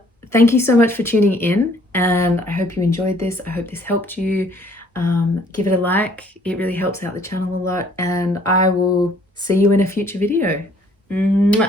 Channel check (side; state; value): both; normal; correlation 0.60